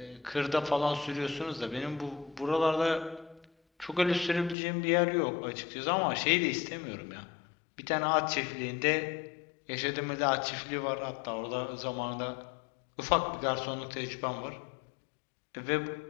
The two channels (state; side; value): drops out; right; at 4.5 s